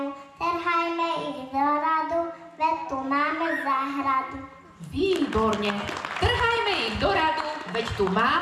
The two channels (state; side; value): identical; both; correlation 1.00